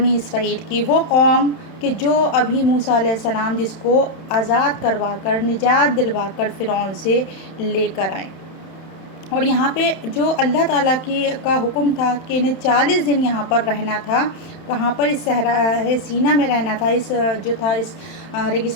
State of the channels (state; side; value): late; right; 31 ms